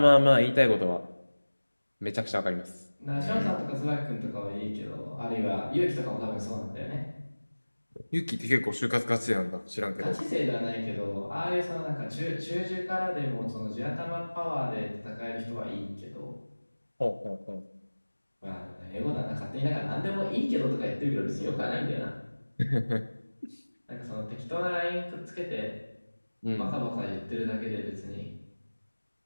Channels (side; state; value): both; inverted; correlation -1.00